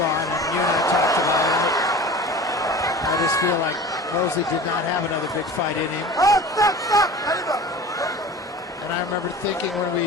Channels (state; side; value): normal; both; correlation 0.38